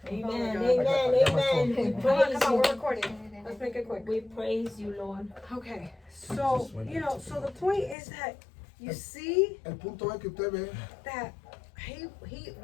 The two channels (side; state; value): right; drops out; at 8.0 s